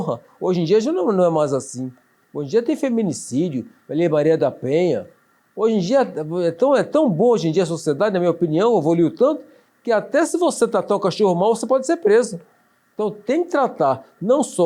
Hoje em dia já não é mais assim. Hoje em dia tem feminicídio, Lei Maria da Penha. Hoje em dia é tão boa hoje em dia a sociedade, na minha opinião, evoluiu tanto, que até se você tratar o cachorro mal, você pode ser preso. Então tem que tratar não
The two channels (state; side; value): identical; both; correlation 1.00